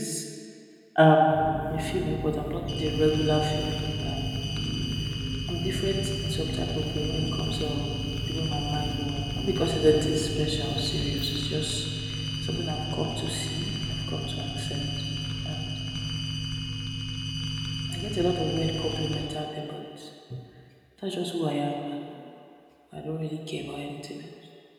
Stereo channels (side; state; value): both; identical; correlation 1.00